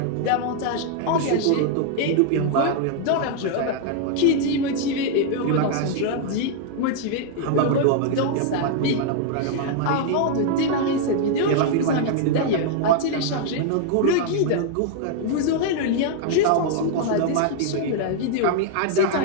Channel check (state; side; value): different; both; correlation 0.00